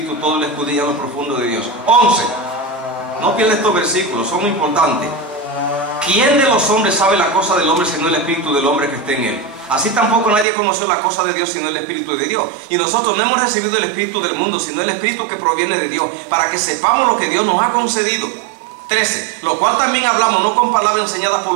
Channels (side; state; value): left; drops out; at 10.5 s